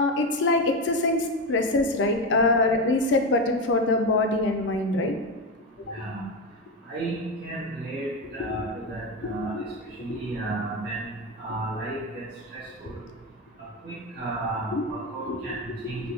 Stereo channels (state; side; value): normal; both; correlation 0.15